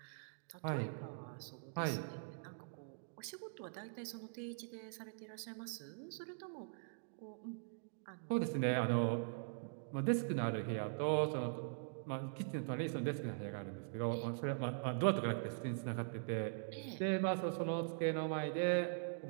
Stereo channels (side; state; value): left; silent; digital silence